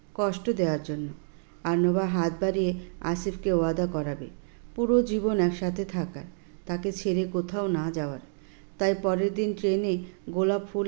কষ্ট দেওয়ার জন্য। আর নোভা হাত বাড়িয়ে আসিফকে ওয়াদা করাবে পুরো জীবন একসাথে থাকার, তাকে ছেড়ে কোথাও না যাওয়ার। তাই পরের দিন ট্রেনে গোলাপ ফুল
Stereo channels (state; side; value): silent; left; digital silence